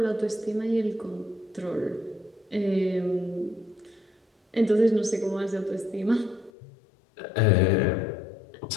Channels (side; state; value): right; drops out; at 6.5 s